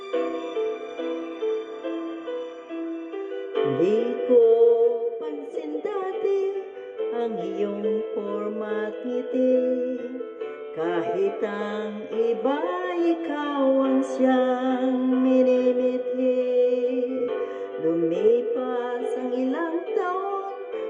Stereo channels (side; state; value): both; identical; correlation 1.00